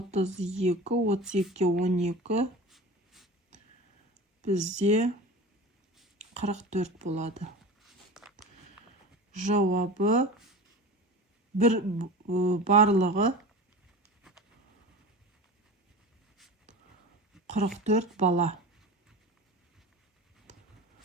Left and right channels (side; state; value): both; normal; correlation 0.33